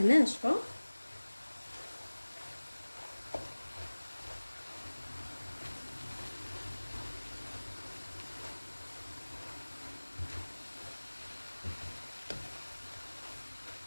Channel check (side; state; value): both; inverted; correlation -1.00